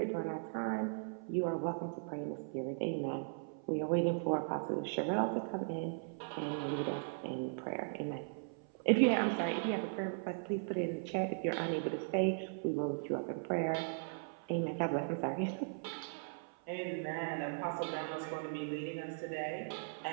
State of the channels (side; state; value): left; silent; 52 dB below the other